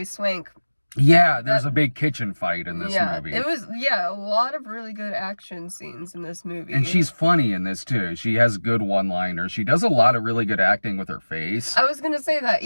Swank. Yeah, there's a big kitchen fight in this movie. It was, a lot of really good action scenes in this movie. And she's funny in this, too. She has good one-liners. She does a lot of really good acting with her face. I was gonna say that.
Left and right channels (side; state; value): both; inverted; correlation -1.00